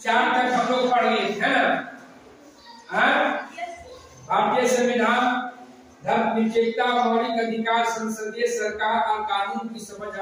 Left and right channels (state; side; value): identical; both; correlation 1.00